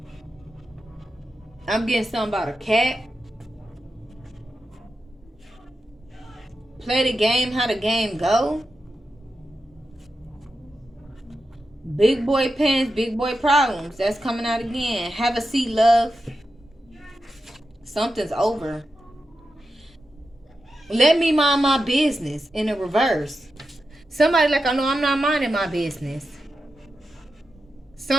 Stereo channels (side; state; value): both; normal; correlation 0.90